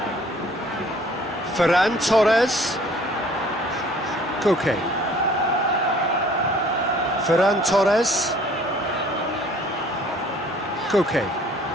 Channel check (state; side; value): normal; both; correlation 0.54